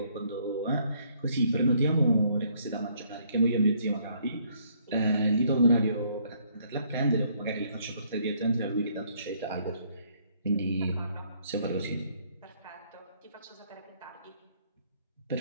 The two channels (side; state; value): both; inverted; correlation -0.67